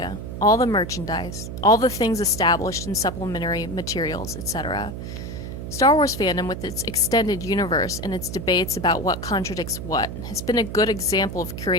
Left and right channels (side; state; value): right; noise; hum, 7 dB below the sound